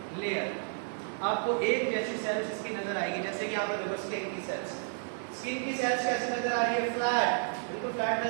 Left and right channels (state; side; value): silent; left; 57 dB below the other